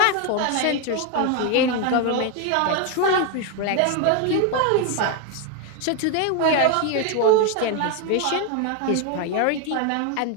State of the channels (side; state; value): both; different; correlation 0.01